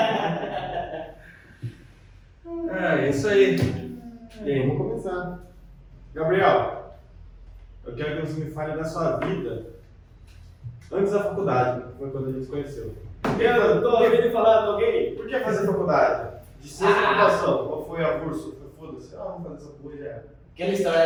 É isso aí. E aí, vamos começar. Gabriel, eu quero que você me fale da sua vida antes da faculdade, que foi quando a gente se conheceu. Eu tô ouvindo falar de alguém? Por que fazer faculdade? De ciência da computação. Qual foi a curso? Foda-se, vamos fazer essa porra já era. Aquela história,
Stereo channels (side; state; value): both; identical; correlation 1.00